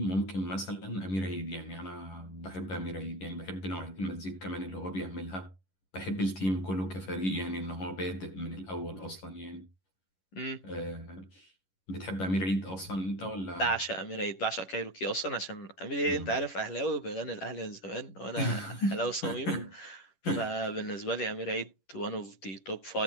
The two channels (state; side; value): late; right; 11 ms